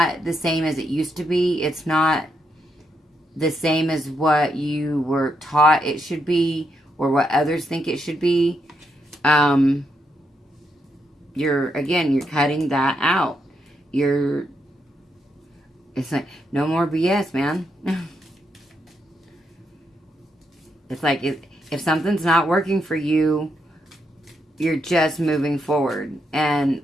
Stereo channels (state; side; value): normal; both; correlation 0.80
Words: the same as it used to be. It's not the same as what you were taught it should be or what others think it should be. You're cutting that out. It's like, no more BS, man. It's like, if something's not working for you, you're just moving forward.